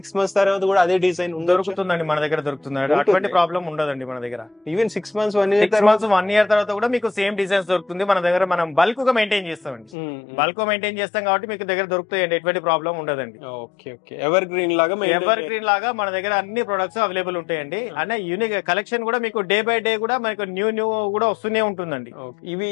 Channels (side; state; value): right; drops out; at 9.9 s